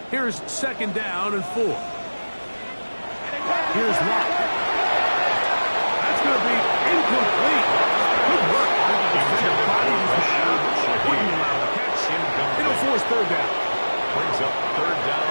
here's 2nd down and 4. is locked. That's going to be incomplete. Good work. The defender bodies the shot. Wouldn't allow the catch. It'll force third down. Brings up third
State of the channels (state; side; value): inverted; both; correlation -1.00